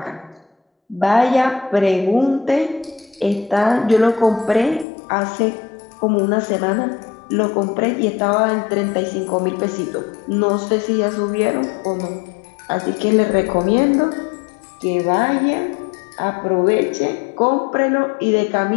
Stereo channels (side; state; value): right; drops out; at 4.9 s